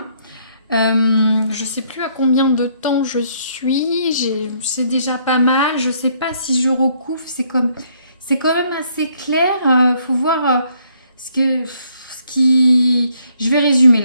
Je ne sais plus à combien de temps je suis. C'est déjà pas mal. Je ne sais pas si je recouvre. C'est quand même assez clair. Faut voir je vais résumer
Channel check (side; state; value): both; inverted; correlation -0.68